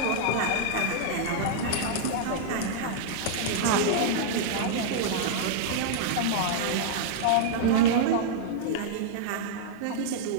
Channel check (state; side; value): different; both; correlation -0.01